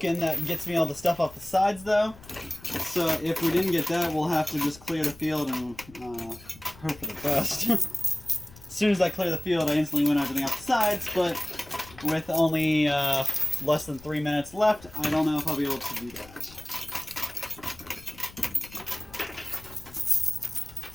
that gets me all the stuff off the sides though. So if we didn't get that, we'll have to just clear the field and hope for the best. As soon as I clear the field, I instantly win everything off the sides, but with only less than 3 minutes left, I don't know if I'll be able to do that.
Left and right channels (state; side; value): noise; left; rumble, 21 dB below the sound